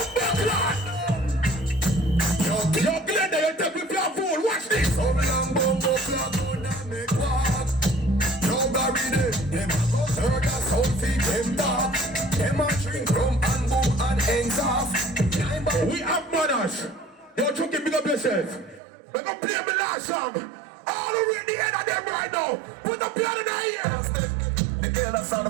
bumbo class. Yo, Glenda, you take me for a fool. Watch this. Some young bumbo class going and make walk. Yo, Barry, them a go hurt us, soul feed them dark. Them a drink rum and boom and ends off. We have manners. Yo, Chucky, big up yourself. We're gonna play me last song. All over in the end of them right now. Put the piano in the ear. The girl that's all the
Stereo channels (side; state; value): left; drops out; at 18.8 s